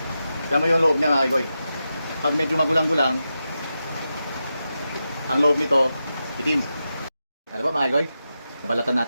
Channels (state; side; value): inverted; both; correlation -0.89